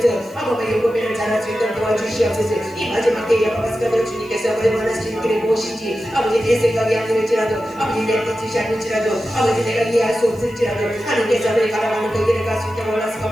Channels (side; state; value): right; noise; hiss, 28 dB below the sound